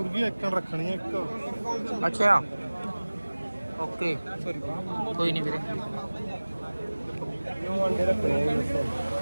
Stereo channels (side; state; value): both; inverted; correlation -1.00